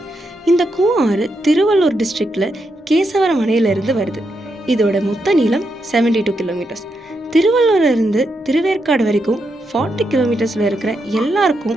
இந்த கூவம் ஆறு திருவள்ளூர் டிஸ்ட்ரிக்டில் கேசவரம் அணையிலிருந்து வருது. இதோட மொத்த நீளம் 72 கிலோமீட்டர்ஸ். திருவள்ளூர்லேருந்து திருவேற்காடு வரைக்கும் 40 கிலோமீட்டர்ஸில் இருக்கிற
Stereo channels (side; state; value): both; normal; correlation 0.83